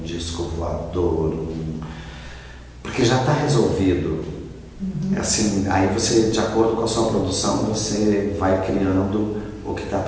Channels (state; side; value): identical; both; correlation 1.00